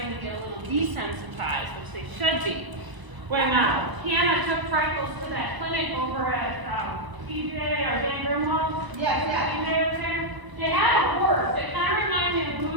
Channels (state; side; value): late; left; 1.0 ms